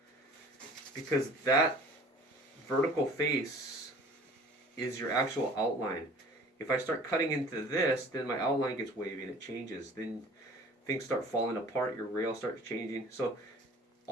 because that vertical face is your actual outline. If I start cutting into this, then my outline gets wavy and it changes. Then things start falling apart, your rail starts changing. So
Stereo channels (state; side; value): normal; both; correlation 0.47